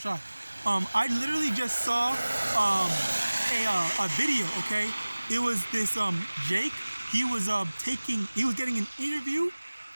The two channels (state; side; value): inverted; both; correlation -1.00